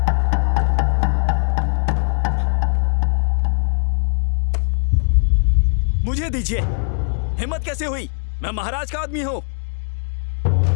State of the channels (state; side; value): silent; right; digital silence